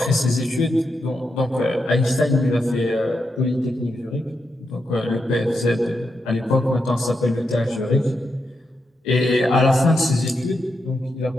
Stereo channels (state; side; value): normal; both; correlation 0.84